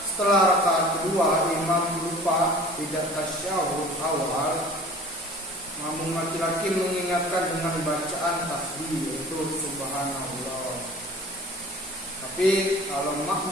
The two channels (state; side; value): normal; both; correlation 0.45